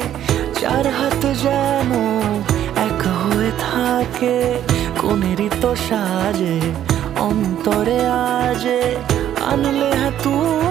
4 হাত যেন এক হয়ে থাকে। কোনেরই তো সাজে অন্তরে আজে আনলে হ্যাঁ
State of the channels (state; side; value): quieter; left; 11.1 dB